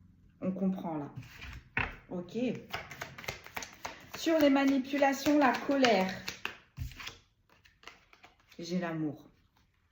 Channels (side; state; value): both; identical; correlation 1.00